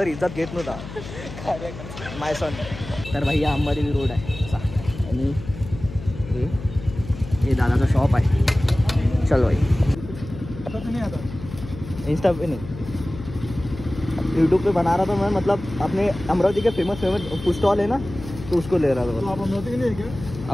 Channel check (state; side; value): noise; left; hum, 12 dB below the sound